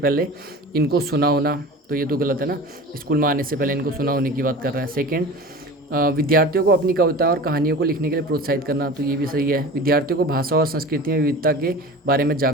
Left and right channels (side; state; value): both; normal; correlation 0.36